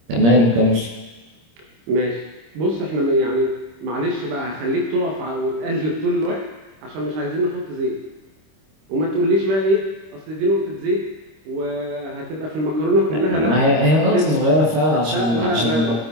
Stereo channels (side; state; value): left; late; 26 ms